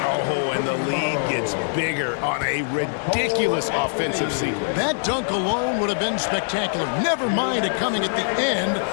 Oh, and the lead gets bigger on a ridiculous offensive sequence. That dunk alone would have been spectacular. Never mind it coming at the end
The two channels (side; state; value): right; silent; 63 dB below the other